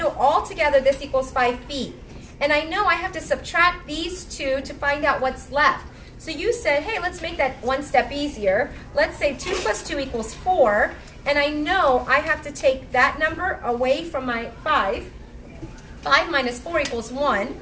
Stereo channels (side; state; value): both; identical; correlation 1.00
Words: all together this equals 5 feet. And I know I have to subtract these 2 to find out what's left. So you said, hey, let's make that one step easier. Let's say 2 plus 2 equals 4. And I know I have to take that number away from my 5. 5 minus 4 equals 1.